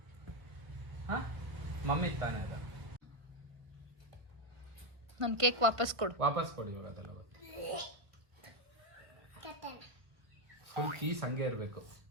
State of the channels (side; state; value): left; late; 1.5 ms